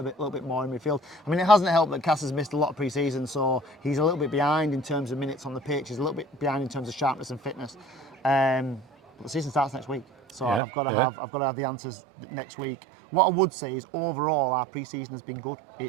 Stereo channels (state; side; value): drops out; left; at 10.6 s